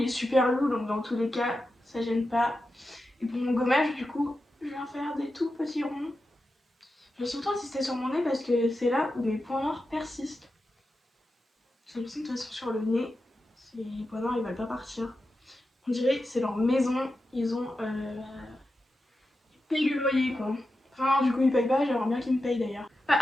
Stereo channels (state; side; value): normal; both; correlation 0.90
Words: est super lourd, donc dans tous les cas ça gêne pas. Et pour mon gommage du coup, je viens faire des tout petits ronds. Je vais surtout insister sur mon nez parce que c'est là où mes points noirs persistent. J'ai l'impression que de toute façon sur le nez, les points noirs ils veulent pas partir. On dirait que c'est leur maison, ils ont payé le loyer quoi. Enfin du coup ils payent pas, j'aimerais bien qu'ils me payent d'ailleurs. Bah,